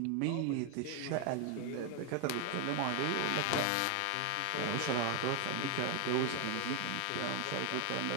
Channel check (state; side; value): different; both; correlation 0.00